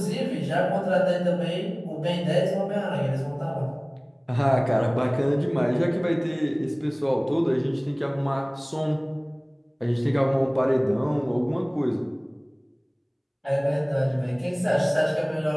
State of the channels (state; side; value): identical; both; correlation 1.00